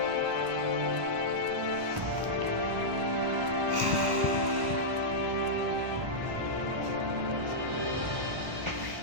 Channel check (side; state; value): left; late; 1.1 ms